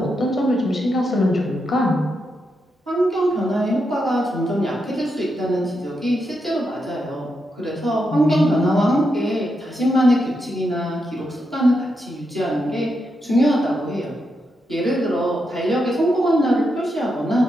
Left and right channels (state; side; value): normal; both; correlation 0.84